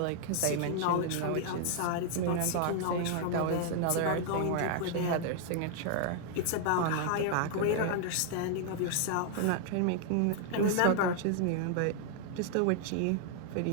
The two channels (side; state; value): both; different; correlation 0.00